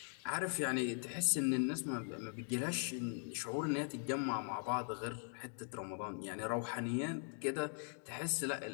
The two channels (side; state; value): right; silent; 51 dB below the other